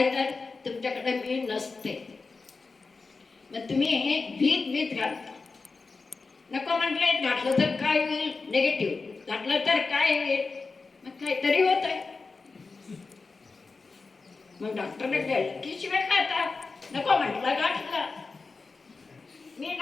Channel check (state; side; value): quieter; right; 4.2 dB